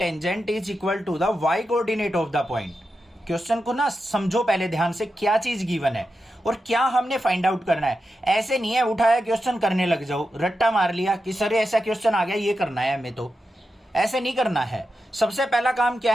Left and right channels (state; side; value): normal; both; correlation 0.89